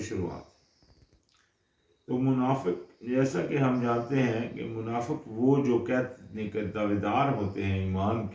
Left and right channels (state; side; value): identical; both; correlation 1.00